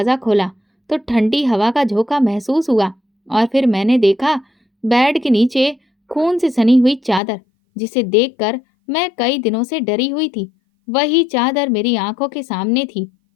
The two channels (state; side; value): drops out; right; at 7.2 s